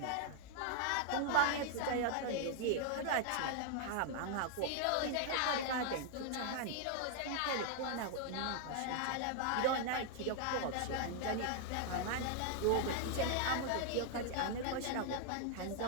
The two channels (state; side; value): different; both; correlation 0.00